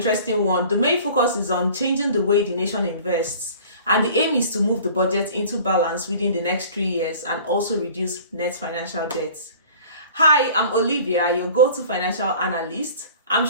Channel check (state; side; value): inverted; both; correlation -0.46